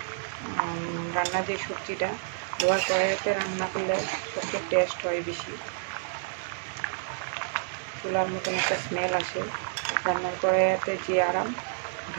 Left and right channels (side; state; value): left; silent; digital silence